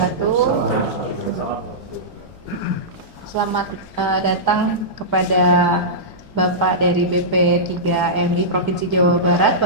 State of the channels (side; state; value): both; normal; correlation -0.15